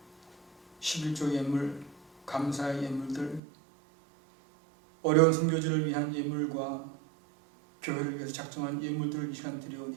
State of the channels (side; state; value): left; drops out; at 3.4 s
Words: 11조 예물, 감사의 예물들, 어려운 선교지를 위한 예물과 교회를 위해서 작정한 예물들을 이 시간